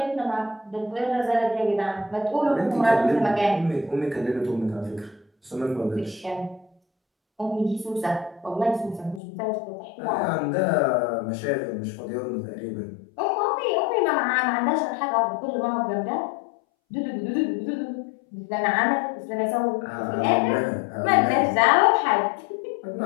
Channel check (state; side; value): drops out; right; at 9.2 s